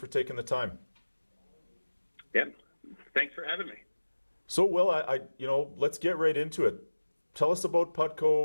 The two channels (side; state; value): both; inverted; correlation -1.00